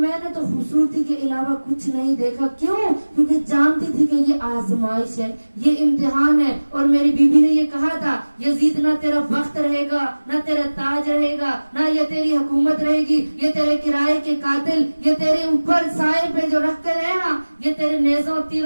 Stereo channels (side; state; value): both; inverted; correlation -1.00